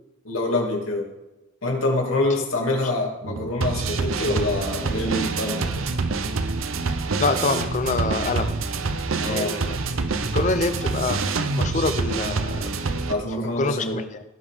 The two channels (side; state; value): both; normal; correlation 0.34